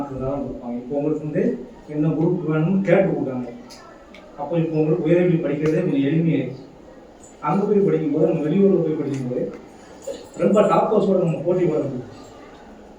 தான் கொடுப்பாங்க. இப்போ உங்களுக்கு வந்து என்ன குரூப் வேணும்னு கேட்டு கொடுத்தாங்க. அப்போ இப்போ உங்களுக்கு உயர்கல்வி படிக்கிறதே கொஞ்சம் எளிமையாயிடுச்சு. அங்கே போய் படிக்கும்போது, நம்ம வெளியூரில் போய் படிக்கும்போது ரொம்ப டாப்பர்ஸோடு நம்ம போட்டி போட முடியும்.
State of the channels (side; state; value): both; identical; correlation 1.00